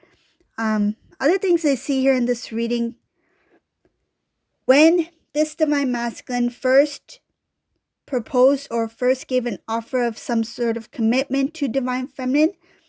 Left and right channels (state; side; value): identical; both; correlation 1.00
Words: Other things I see here in this reading, when this divine masculine first proposed or first gave an offer of some sort of commitment to divine feminine,